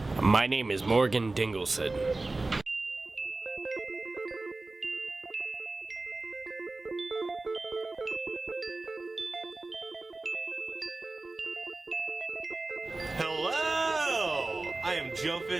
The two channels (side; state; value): left; quieter; 3.2 dB